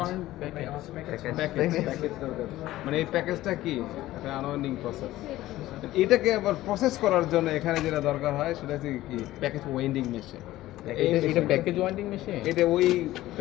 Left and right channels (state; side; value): quieter; right; 15.7 dB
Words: মানে এই প্যাকেজটা কি একটা আনওয়াইন্ডিং প্রসেস এটাকে আবার প্রসেস করার জন্য এখানে যেটা দরকার হয় সেটা হচ্ছে কি প্যাকেজ ওয়েন্ডিং মেশিন এটা প্যাকেজ ওয়াইন্ডিং মেশিন। এটা ওই